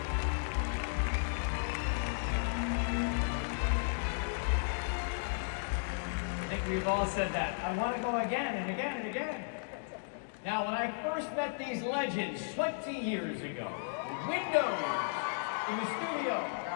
We've all said that. I want to go again and again and again. Now, when I first met these legends 20 years ago, windows in the studio where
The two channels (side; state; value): right; silent; digital silence